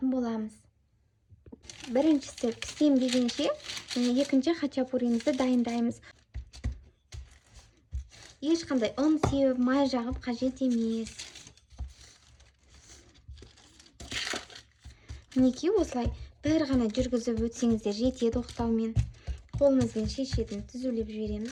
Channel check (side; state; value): both; identical; correlation 1.00